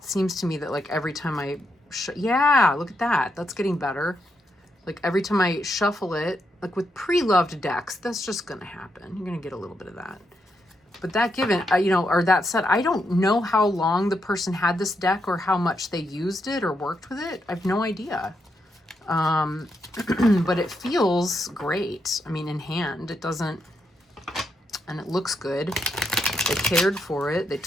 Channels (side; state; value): both; normal; correlation 0.81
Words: seems to me that like every time I, yeah, look at that. That's getting better. Like every time I shuffle it, like with pre-loved decks, that's just going to happen. You're going to get a little bit of that. But that given, you know, or that said, I don't know how long the person had this deck or how much they used it or worked with it. I have no idea. But it feels great. I mean, in hand, it doesn't, and it looks good. They cared for it. They